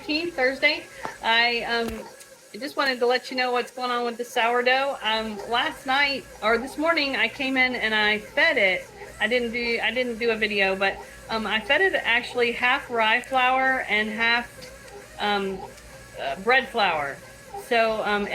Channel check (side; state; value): both; identical; correlation 1.00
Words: Thursday. I just wanted to let you know what's going on with the sourdough. Last night or this morning, I came in and I fed it. I didn't do a video, but I fed it actually half rye flour and half um, bread flour. So